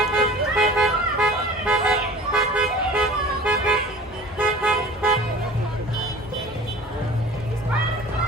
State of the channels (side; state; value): both; normal; correlation 0.42